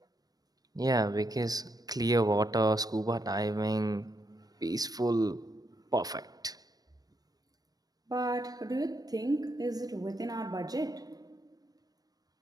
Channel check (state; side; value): late; left; 0.19 ms